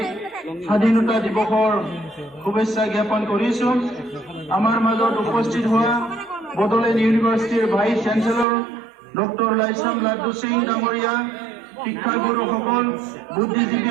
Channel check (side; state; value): left; drops out; at 8.5 s